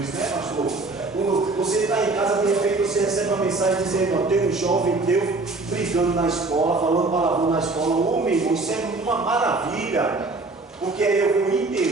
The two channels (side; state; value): left; quieter; 3.4 dB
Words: isso, né, pastor? Quando você está em casa, de repente você recebe uma mensagem dizendo: ó, tem um jovem teu brigando na escola, falando palavrão na escola. Ô, meu irmão, isso é uma maravilha. Porque aí eu vou